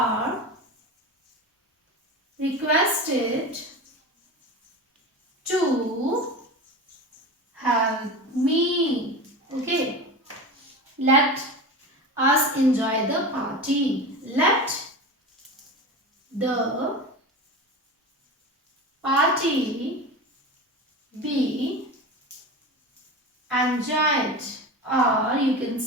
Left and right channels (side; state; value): both; normal; correlation 0.28